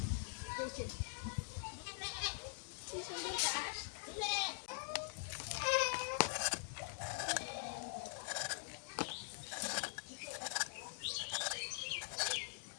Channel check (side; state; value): right; silent; digital silence